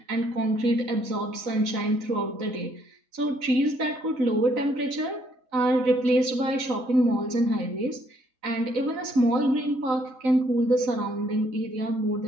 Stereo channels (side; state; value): left; late; 3.9 ms